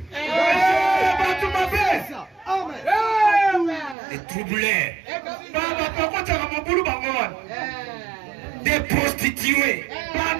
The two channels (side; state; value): left; drops out; at 4.0 s